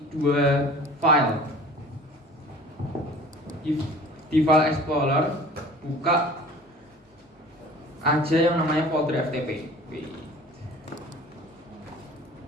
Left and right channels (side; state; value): both; normal; correlation 0.44